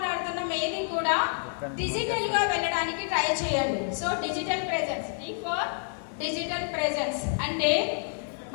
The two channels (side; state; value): right; silent; 59 dB below the other